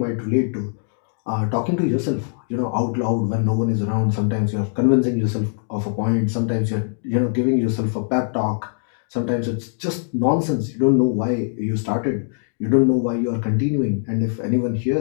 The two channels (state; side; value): silent; right; digital silence